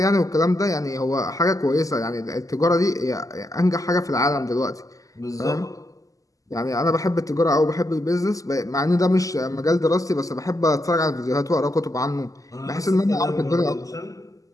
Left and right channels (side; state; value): right; late; 0.17 ms